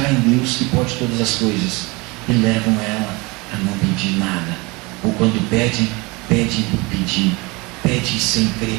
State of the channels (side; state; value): left; quieter; 25.6 dB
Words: em Deus que pode todas as coisas, e levam ela a não pedir nada, ou quando pedem por pedir, pedem sem crer